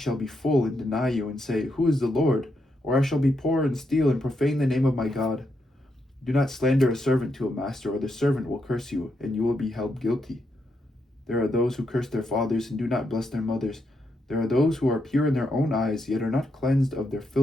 be full and deny you and say, Who is the Lord? Or I shall be poor and steal and profane the name of my God. Do not slander a servant to a master, or the servant will curse you, and you will be held guilty. There are those who curse their fathers and do not bless their mothers. There are those who are pure in their own eyes, yet are not cleansed of their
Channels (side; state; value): both; normal; correlation 0.81